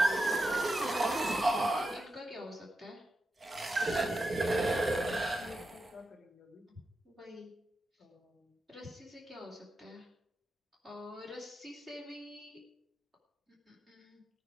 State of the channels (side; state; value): both; normal; correlation 0.88